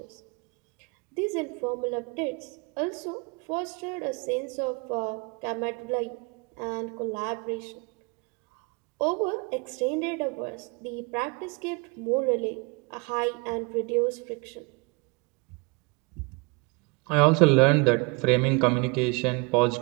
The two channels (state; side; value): quieter; left; 28.3 dB